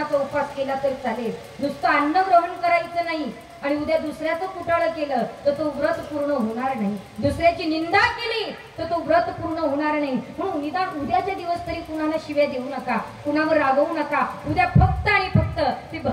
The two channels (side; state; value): both; identical; correlation 1.00